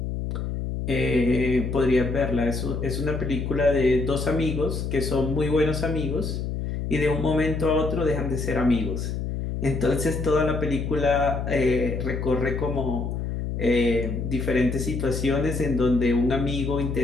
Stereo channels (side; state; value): left; noise; hum, 3 dB below the sound